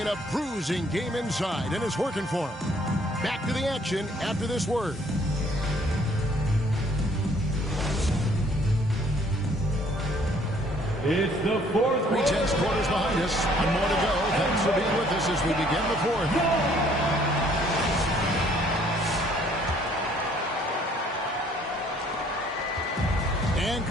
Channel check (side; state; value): both; normal; correlation 0.61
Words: a bruising game inside, and it's working for them. Back to the action after this word. It's the fourth quarter. 3/10 quarters behind us. One more to go. Thanks for being with us as we begin the fourth. And